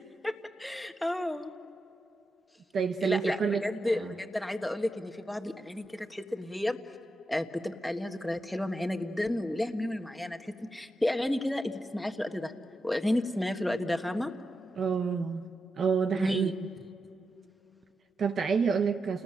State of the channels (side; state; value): both; normal; correlation 0.88